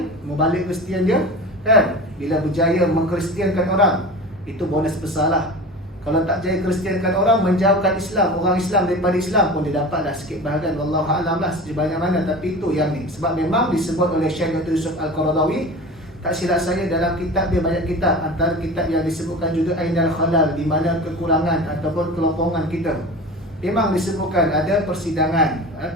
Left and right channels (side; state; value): both; normal; correlation 0.34